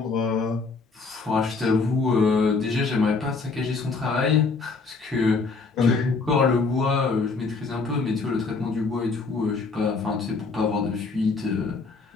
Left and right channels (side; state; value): right; quieter; 4.2 dB